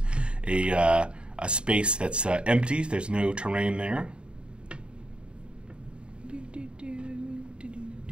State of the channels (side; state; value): left; late; 0.053 ms